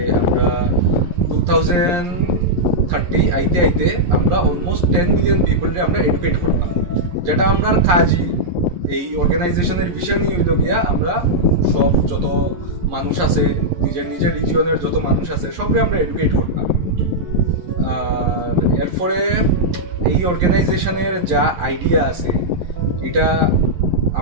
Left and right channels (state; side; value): late; left; 11 ms